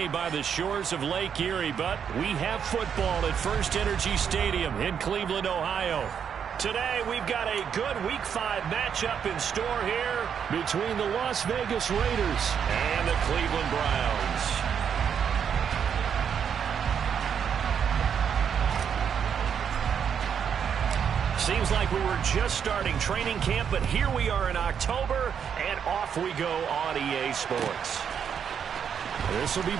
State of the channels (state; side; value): quieter; left; 7.7 dB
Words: by the shores of Lake Erie, but we have football at First Energy Stadium in Cleveland, Ohio. Today, we've got a good Week 5 matchup in store here between the Las Vegas Raiders and the Cleveland Browns. Seems like we were just starting training camp, but here we are in October, and off we go on EA Sports. This will be